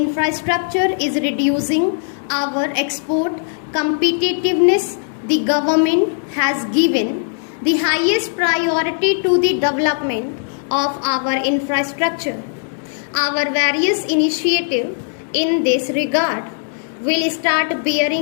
is reducing our export competitiveness. The government has given the highest priority to the development of our infrastructure. Our various initiatives in this regard will start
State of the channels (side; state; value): right; silent; digital silence